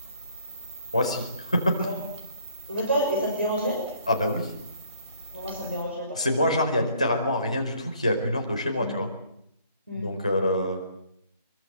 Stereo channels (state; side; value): inverted; both; correlation -0.61